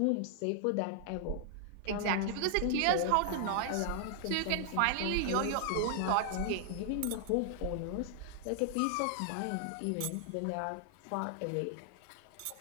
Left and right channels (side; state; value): both; different; correlation 0.00